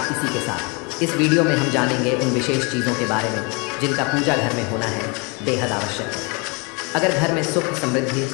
इसी के साथ। इस वीडियो में हम जानेंगे उन विशेष चीज़ों के बारे में जिनका पूजा घर में होना है बेहद आवश्यक है। अगर घर में सुख समृद्धि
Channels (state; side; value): quieter; right; 31.3 dB